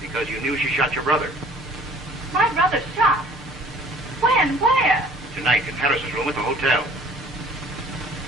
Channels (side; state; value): both; normal; correlation 0.52